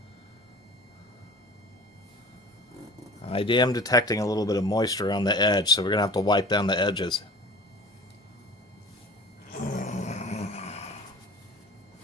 I am detecting a little bit of moisture on the edge, so we're going to have to wipe down the edges.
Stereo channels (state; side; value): normal; both; correlation 0.41